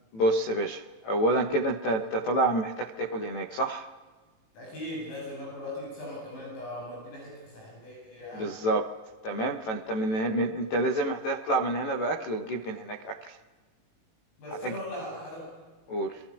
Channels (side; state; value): right; late; 18 ms